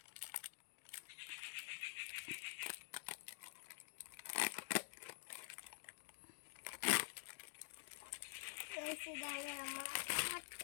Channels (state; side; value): silent; right; digital silence